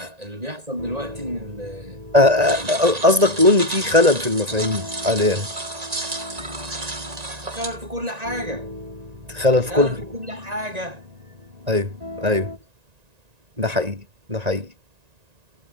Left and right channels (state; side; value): late; left; 1.9 ms